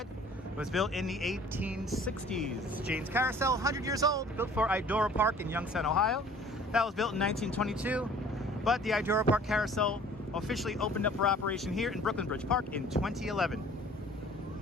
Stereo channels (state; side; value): normal; both; correlation 0.51